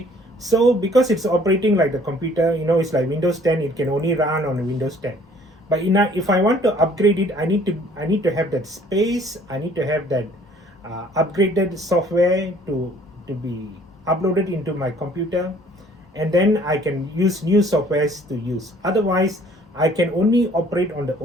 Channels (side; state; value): both; normal; correlation 0.57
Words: so because it's operating like the computer, it's like Windows 10, it can only run on Windows 10. But if I want to upgrade it, I need to have that space. I need to have that upgraded software to be uploaded into my computer, and then I can use new softwares to use. Otherwise, I can only operate on the